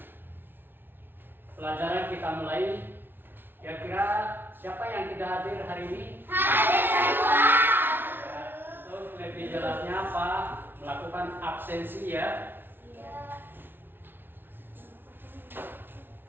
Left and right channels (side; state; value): left; late; 0.10 ms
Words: pelajaran kita mulai, kira-kira siapa yang tidak hadir hari ini? Hadir semua. Ya, untuk lebih jelasnya apa? Melakukan absensi ya.